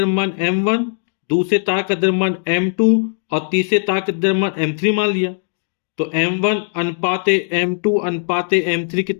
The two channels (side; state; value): right; silent; 67 dB below the other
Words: M1, दूसरे तार का द्रव्यमान M2 और तीसरे तार का द्रव्यमान M3 मान लिया। तो M1 अनुपाते M2 अनुपाते M3